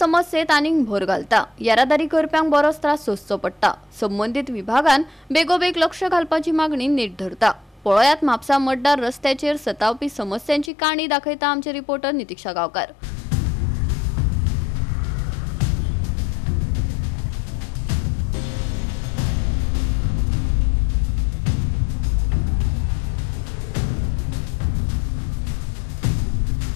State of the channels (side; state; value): right; drops out; at 10.7 s